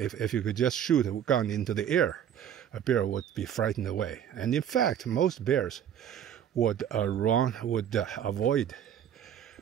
you could just shoot a gun into the air, a bear would be frightened away. And in fact, most bears would avoid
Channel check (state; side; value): quieter; left; 9.5 dB